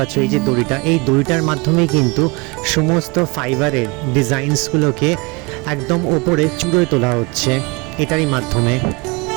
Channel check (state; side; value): quieter; left; 27.1 dB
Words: এই যে দড়িটা, এই দড়িটার মাধ্যমে কিন্তু সমস্ত ফাইবারের ডিজাইনসগুলোকে একদম ওপরে চূড়োয় তোলা হচ্ছে এটারই মাধ্যমে।